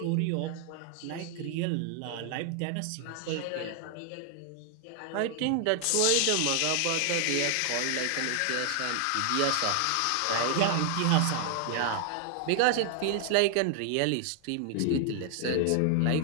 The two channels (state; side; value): different; both; correlation 0.00